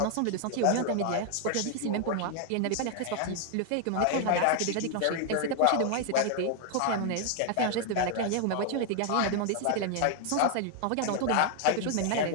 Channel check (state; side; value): different; both; correlation 0.00